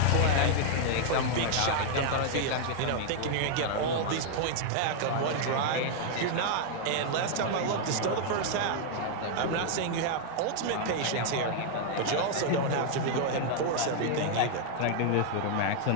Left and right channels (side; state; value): both; different; correlation 0.00